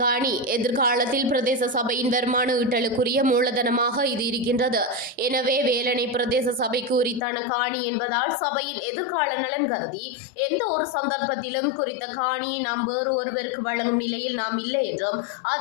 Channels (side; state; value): right; drops out; at 7.2 s